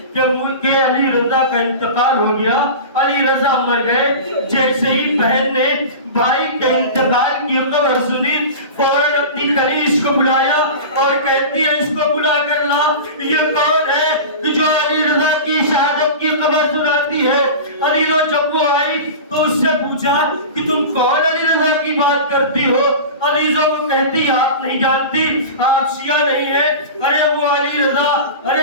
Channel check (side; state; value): both; inverted; correlation -0.31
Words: کہ علی رضا کا انتقال ہو گیا, علی رضا مر گئے. جیسے ہی بہن نے بھائی کے انتقال کی خبر سنی فوراً اپنی کنیز کو بلایا اور کہتی ہے اس کو بلا کر لا. یہ کون ہے جو علی رضا کی شہادت کی خبر سناتی ہے؟ علی رضا جب وہ آئی تو اس سے پوچھا کہ تم کون علی رضا کی بات کرتی ہو؟ علی رضا کو کہتی آپ نہیں جانتی, آپ شیعہ نہیں ہیں. ارے وہ علی رضا, ارے